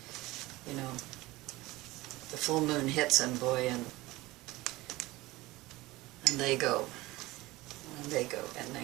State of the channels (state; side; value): quieter; left; 19.6 dB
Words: you know, the full moon hits them, boy, and they go, and they go, and